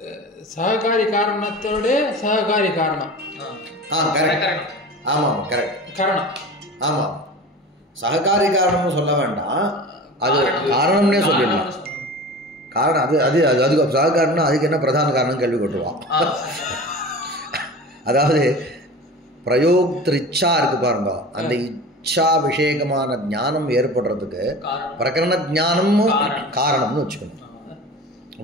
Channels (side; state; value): both; normal; correlation 0.35